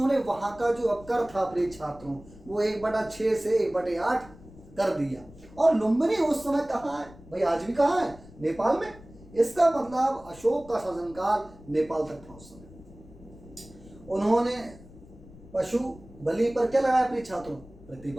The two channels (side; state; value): left; noise; rumble, 20 dB below the sound